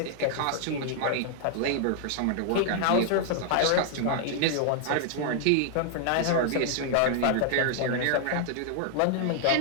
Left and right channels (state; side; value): different; both; correlation 0.00